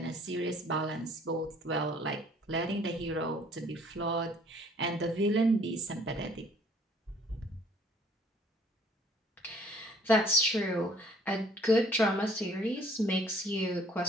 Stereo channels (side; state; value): both; normal; correlation 0.56